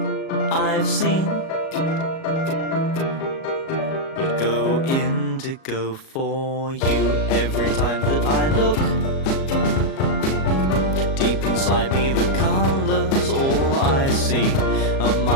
I've seen would go indigo for you. Every time that I look deep inside me, the colors all I see.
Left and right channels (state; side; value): late; right; 37 ms